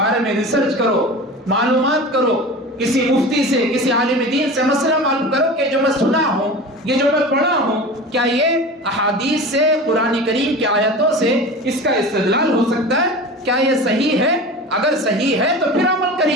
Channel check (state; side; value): normal; both; correlation 0.33